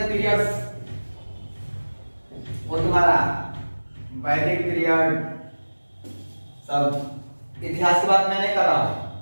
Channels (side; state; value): both; inverted; correlation -1.00